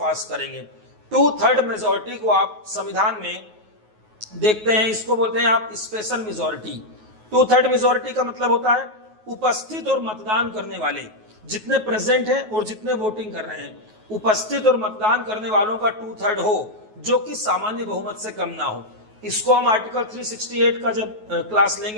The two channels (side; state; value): left; late; 9.3 ms